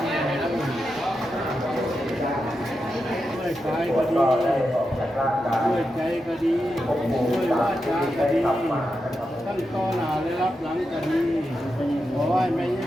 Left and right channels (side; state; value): both; normal; correlation 0.88